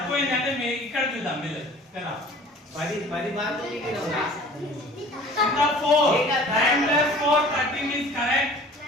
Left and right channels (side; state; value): both; normal; correlation 0.47